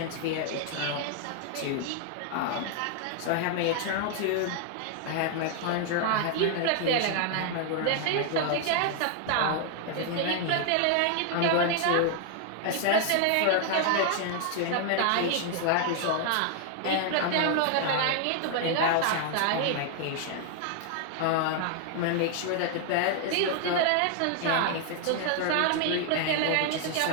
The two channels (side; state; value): both; different; correlation 0.00